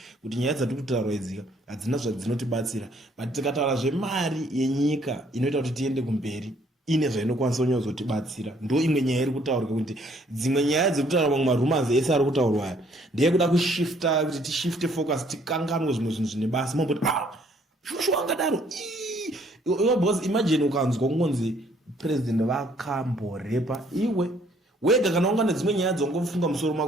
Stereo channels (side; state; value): both; normal; correlation 0.64